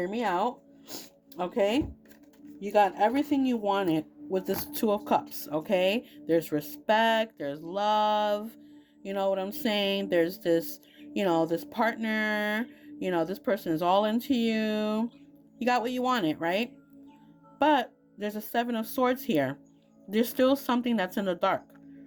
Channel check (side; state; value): both; identical; correlation 1.00